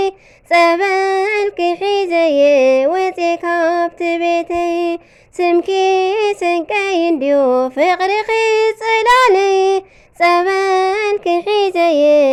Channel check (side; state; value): both; identical; correlation 1.00